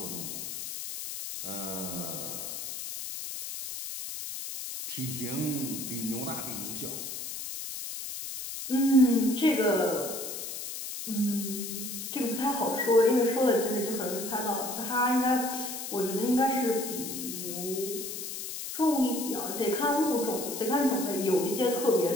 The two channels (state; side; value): noise; left; hiss, 7 dB below the sound